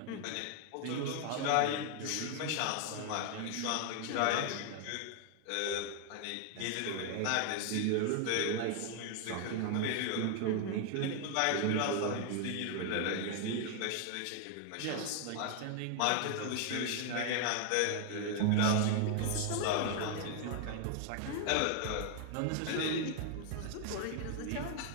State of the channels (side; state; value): both; different; correlation 0.00